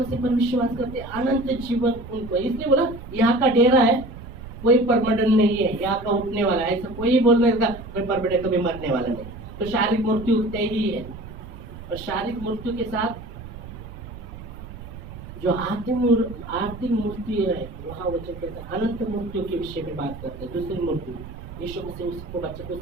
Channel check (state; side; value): noise; right; rumble, 13 dB below the sound